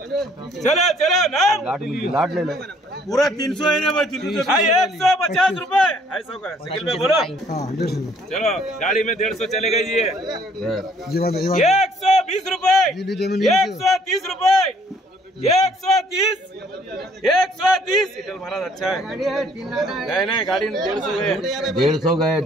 चलो चलो नाम लाट ले लो. पूरा 300 है ना भाई. 150 रुपए ऐसा का साइकिल में बोलो. चलो गाड़ी में 150 चलेगा जी. 120 रुपए 130 रुपए 130 इटल महाराज अच्छा है. नहीं गाड़ी 150 गए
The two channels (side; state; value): both; normal; correlation 0.61